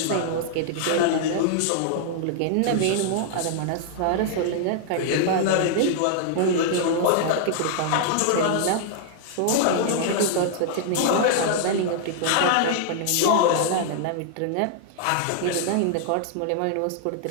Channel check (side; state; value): both; different; correlation -0.01